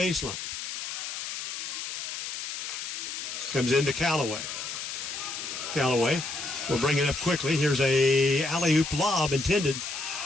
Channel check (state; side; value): noise; left; hiss, 6 dB below the sound